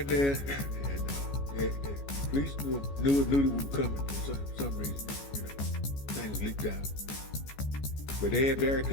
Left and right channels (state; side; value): late; right; 14 ms